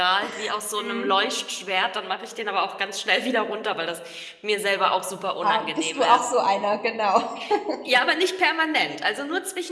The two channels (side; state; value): both; identical; correlation 1.00